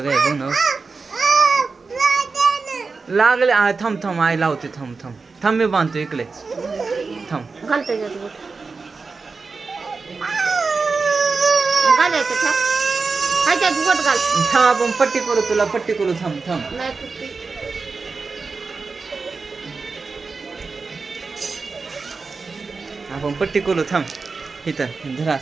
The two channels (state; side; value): quieter; left; 4.4 dB